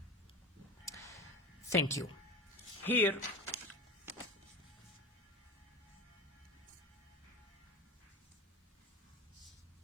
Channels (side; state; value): both; normal; correlation 0.29